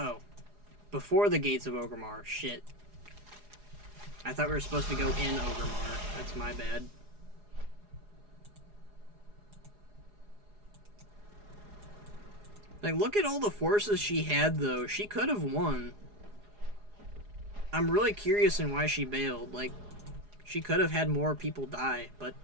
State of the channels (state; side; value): late; left; 4.8 ms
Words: Before the gates of Orgrimmar. Shit. I thought we were supposed to go in Orgrimmar. That's my bad. Like, look at all the forces she had, though. She could have won. I'm really curious in why she bailed. Like, she could have had more people die, but